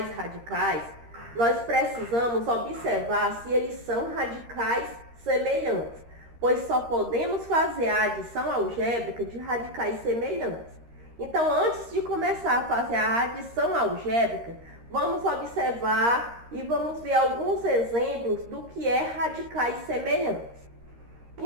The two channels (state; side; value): late; left; 13 ms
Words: radicais, nós precisamos observar se eles são radicais semelhantes, pois só podemos fazer a adição algébrica de radicais semelhantes. Então, antes de começar a fazer a adição algébrica, vamos observar e vamos ver alguns exemplos do que é radicais semelhantes.